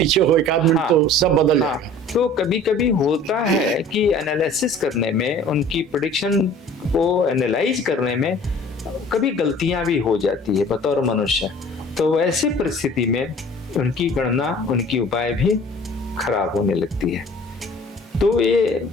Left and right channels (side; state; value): both; normal; correlation 0.48